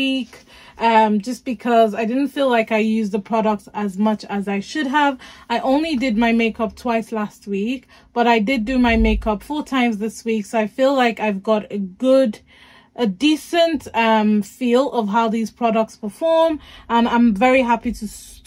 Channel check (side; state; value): both; identical; correlation 1.00